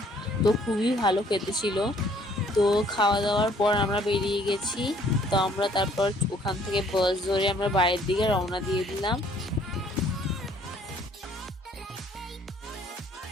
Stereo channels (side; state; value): both; normal; correlation 0.61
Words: তো খুবই ভালো খেতে ছিল। তো খাওয়া দাওয়ার পর আমরা বেরিয়ে গেছি। তো আমরা তারপর ওখান থেকে বাস ধরে আমরা বাইরের দিকে রওনা দিয়ে দিলাম।